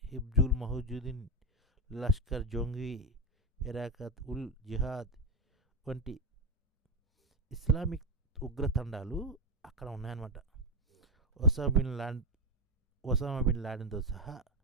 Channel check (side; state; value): both; normal; correlation 0.10